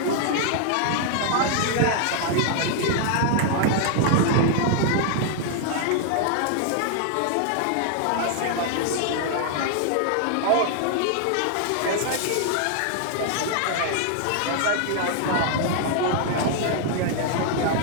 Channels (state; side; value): different; both; correlation 0.00